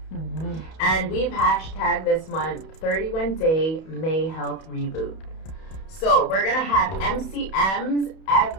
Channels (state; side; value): late; right; 31 ms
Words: And we've hashtagged this month 31-Day May Health Reboot. So we're going to have MCMs